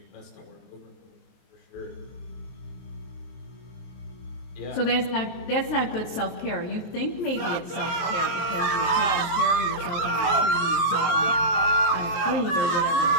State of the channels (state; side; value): late; right; 23 ms